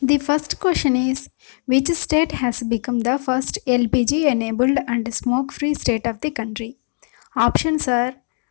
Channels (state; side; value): silent; right; digital silence